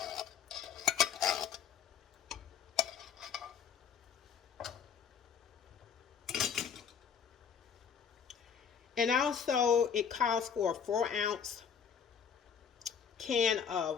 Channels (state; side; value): quieter; right; 7.1 dB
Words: And also it calls for a 4-ounce can